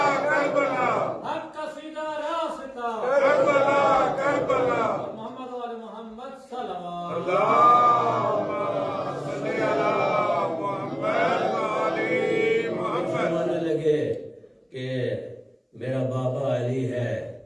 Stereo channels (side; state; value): both; identical; correlation 1.00